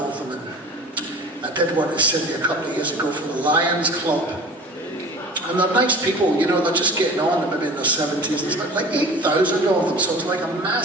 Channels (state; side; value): normal; both; correlation 0.41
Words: them. And I did one in Sydney a couple of years ago for the Lions Club. And they're nice people, you know, they're just getting on, they're maybe in their 70s. There's like 8,000 of them, so it's like a